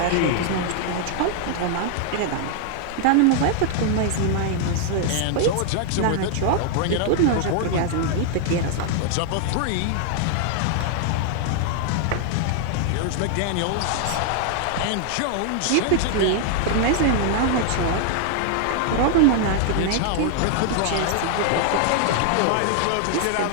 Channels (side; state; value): both; different; correlation 0.00